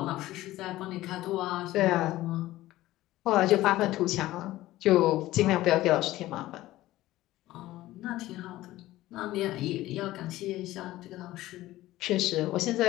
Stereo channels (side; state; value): right; quieter; 16.2 dB